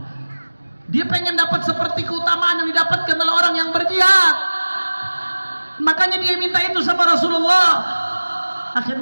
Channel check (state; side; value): inverted; both; correlation -1.00